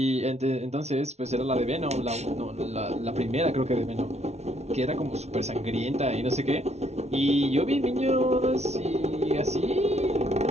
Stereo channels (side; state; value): left; late; 0.31 ms